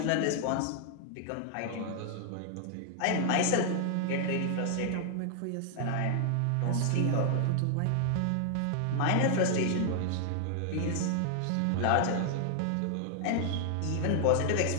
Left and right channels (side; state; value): both; different; correlation 0.00